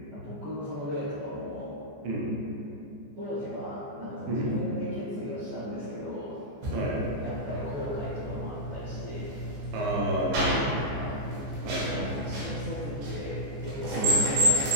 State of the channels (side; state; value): left; late; 14 ms